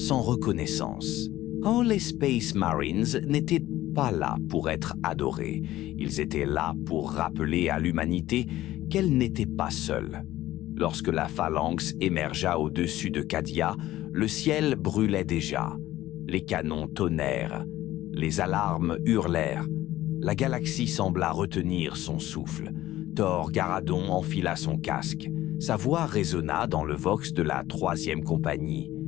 reconnaissance. Oh, les Space Marines n'étaient pas là pour être adorés. Ils étaient là pour rappeler à l'humanité qu'elle n'était pas seule. Lorsque la phalanx émergea au-dessus de Cadia, le ciel brûlait déjà. Les canons tonnèrent. Les alarmes hurlèrent. La galaxie sembla retenir son souffle. Thor Garadon enfila son casque. Sa voix résonna dans le vox de la 3e compagnie,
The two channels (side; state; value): right; quieter; 15.1 dB